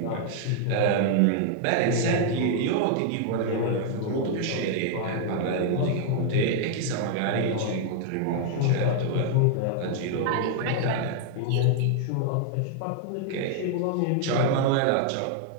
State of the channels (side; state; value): both; different; correlation 0.00